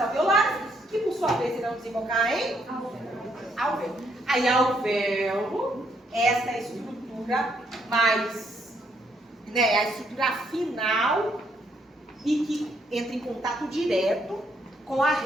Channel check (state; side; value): normal; both; correlation 0.72